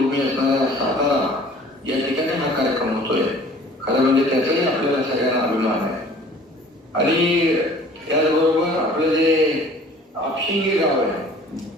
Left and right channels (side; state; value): both; normal; correlation 0.50